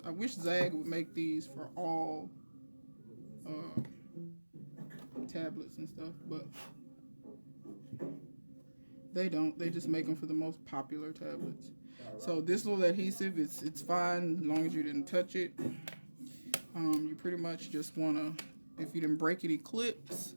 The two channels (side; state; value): both; inverted; correlation -1.00